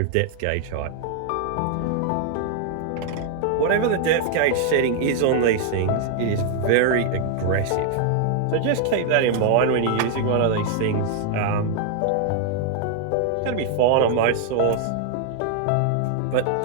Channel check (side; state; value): both; different; correlation 0.00